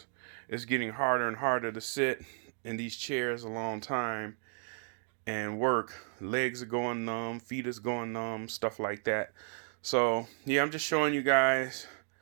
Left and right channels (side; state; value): left; silent; 55 dB below the other